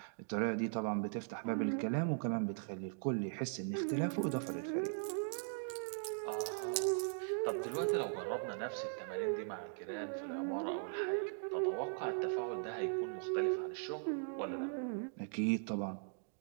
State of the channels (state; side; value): silent; left; digital silence